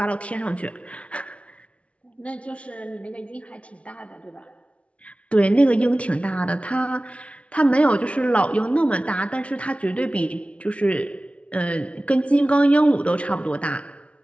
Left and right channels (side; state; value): right; late; 0.062 ms